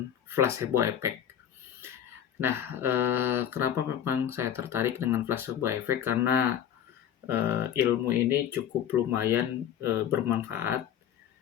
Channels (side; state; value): right; quieter; 9.8 dB